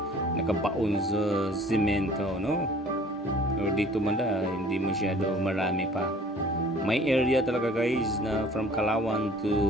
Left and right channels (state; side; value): normal; both; correlation 0.51